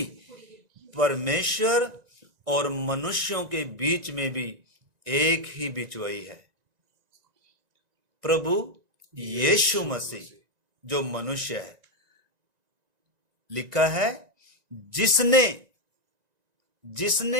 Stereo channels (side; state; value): left; late; 1.9 ms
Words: परमेश्वर और मनुष्यों के बीच में भी एक ही बिचवई है, प्रभु यीशु मसीह जो मनुष्य है। लिखा है